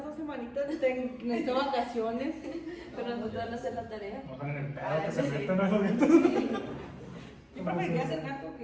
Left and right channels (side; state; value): both; identical; correlation 1.00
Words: 2 semanitas, necesito vacaciones. Pero no te van a hacer la tarea. No están en el pedo, que Ah, se sí. meten a los gatos. Yo preferiría ser gato